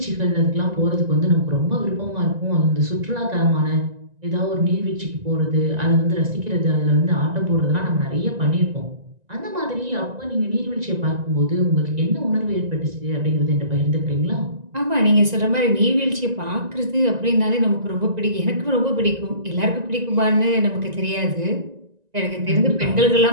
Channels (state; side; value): late; left; 1.9 ms